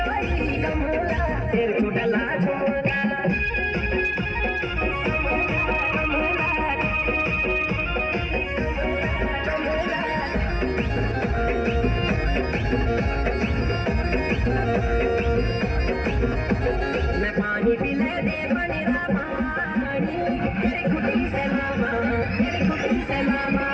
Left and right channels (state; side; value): identical; both; correlation 1.00